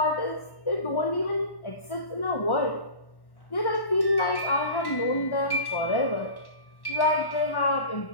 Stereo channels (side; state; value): right; late; 1.1 ms